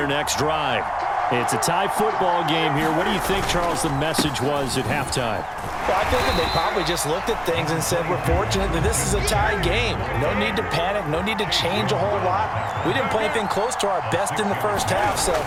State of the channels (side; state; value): both; identical; correlation 1.00